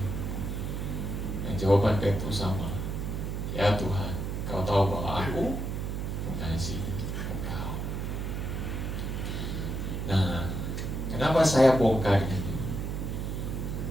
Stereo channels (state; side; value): noise; right; hum, 3 dB below the sound